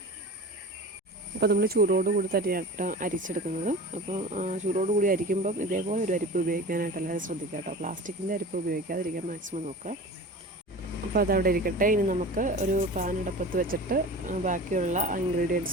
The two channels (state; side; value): normal; both; correlation 0.36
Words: അപ്പോൾ നമ്മൾ ചൂടോടുകൂടി തന്നെയായിട്ട് അരിച്ചെടുക്കുന്നത്. അപ്പോൾ ചൂടോടുകൂടി അരിക്കുമ്പം ഇതേപോലെ ഒരു അരിപ്പ് ഉപയോഗിക്കാനായിട്ട് എല്ലാവരും ശ്രദ്ധിക്കുക കേട്ടോ. പ്ലാസ്റ്റിക്കിൻ്റെ അരിപ്പ് ഉപയോഗിക്കാതിരിക്കാൻ മാക്സിമം നോക്കുക. അപ്പോൾ അതവിടെ ഇരിക്കട്ടെ. ഇനി നമുക്ക് ഒരു പാൻ അടുപ്പത്ത് വെച്ചിട്ട് ബാക്കിയുള്ള